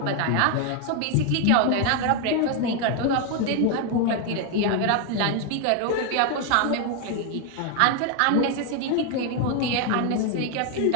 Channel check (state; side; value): different; both; correlation 0.00